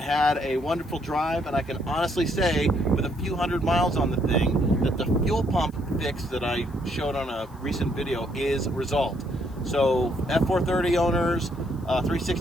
had a wonderful drive, and I can honestly say, with a few hundred miles on the thing, that the fuel pump fix that I showed on a recent video is resolved. So F430 owners,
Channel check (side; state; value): left; noise; hiss, 29 dB below the sound